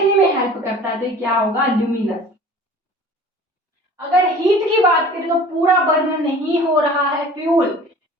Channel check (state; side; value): normal; both; correlation 0.44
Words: में हेल्प करता है, तो क्या होगा? ल्यूमिनस। अगर हीट की बात करें तो पूरा बर्न नहीं हो रहा है फ्यूल,